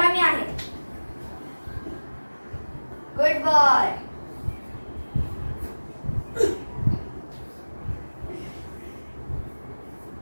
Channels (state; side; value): inverted; both; correlation -1.00